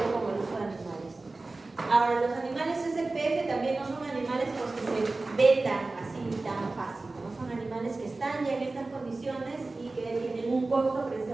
como el uso de animales. Ahora, los animales SPF también no son animales los que se vendan así tan fácil, ¿no? Son animales que están ya en estas condiciones y que tienen un costo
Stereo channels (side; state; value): left; quieter; 3.3 dB